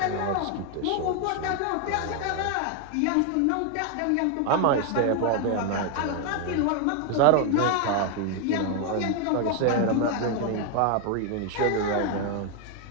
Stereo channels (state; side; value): different; both; correlation 0.01